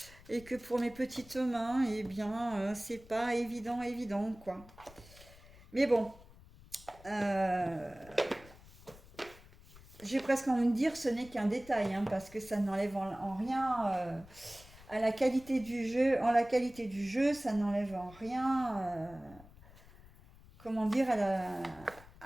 et que pour mes petites mains, eh bien, c'est pas évident quoi. Mais bon, euh, j'ai presque envie de dire ce n'est qu'un détail, hein, parce que ça n'enlève en rien à la qualité du jeu. En la qualité du jeu, ça n'enlève en rien comment dire,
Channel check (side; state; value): left; noise; rumble, 22 dB below the sound